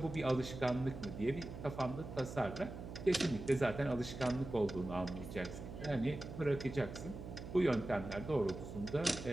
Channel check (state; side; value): noise; right; hum, 10 dB below the sound